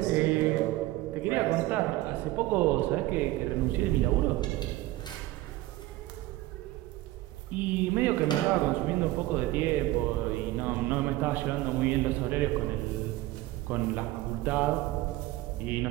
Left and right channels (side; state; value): left; quieter; 17.3 dB